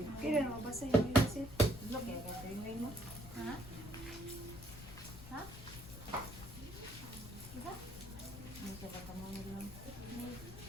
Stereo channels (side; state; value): left; noise; rumble, 12 dB below the sound